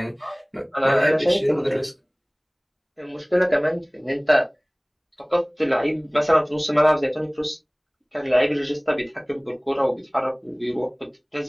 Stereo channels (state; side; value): identical; both; correlation 1.00